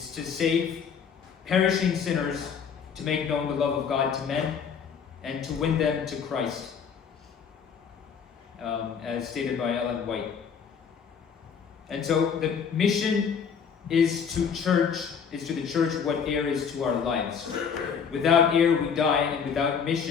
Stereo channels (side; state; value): right; quieter; 6.7 dB